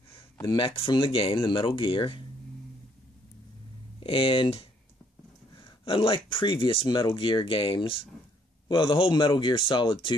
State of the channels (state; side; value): normal; both; correlation 0.67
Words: the mech from the game, the Metal Gear. And unlike previous Metal Gear games, well, the whole Metal Gear Solid